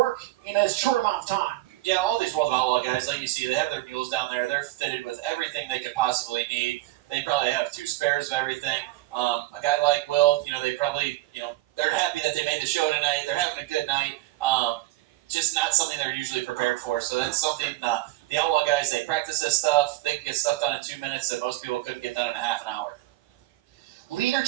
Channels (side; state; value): left; quieter; 18.0 dB